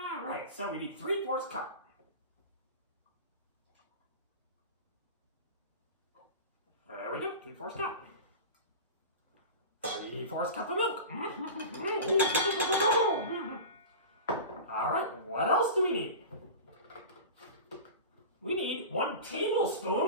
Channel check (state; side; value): inverted; both; correlation -0.32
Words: right, so we need 3/4 cup. There we go, 3/4 cup. 3/4 cup of milk. All right, what else do we need? We need 1